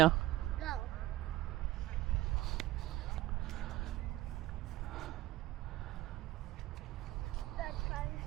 Go. Let's try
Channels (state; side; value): quieter; left; 16.2 dB